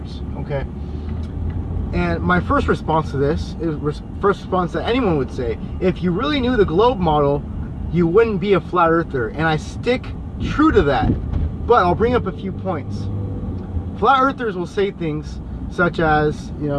Okay. And my first response to this is first response that anyone would say: if you really knew the globe model, you wouldn't be a flat earther. And I stick true to that. But I'll bring up a few points. Flat earthers will say things such as,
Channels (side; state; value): both; identical; correlation 1.00